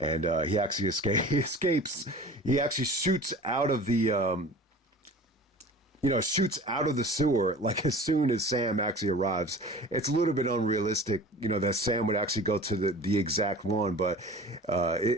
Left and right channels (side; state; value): both; normal; correlation 0.41